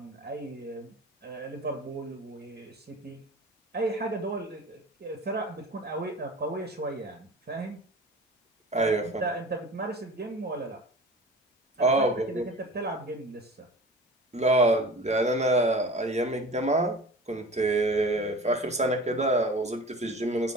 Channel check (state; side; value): normal; both; correlation 0.38